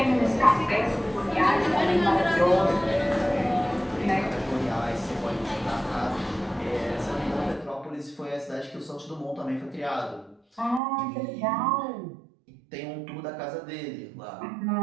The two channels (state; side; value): drops out; left; at 10.8 s